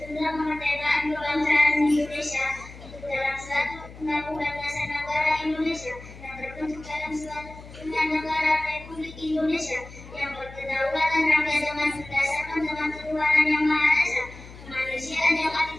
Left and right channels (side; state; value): left; noise; hum, 17 dB below the sound